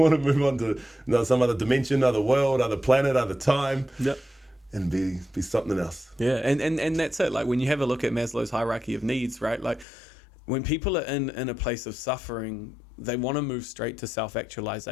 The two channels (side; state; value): right; drops out; at 9.9 s